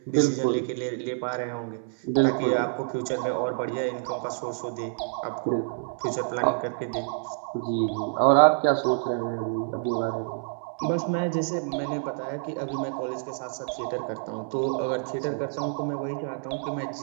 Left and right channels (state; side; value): silent; left; 60 dB below the other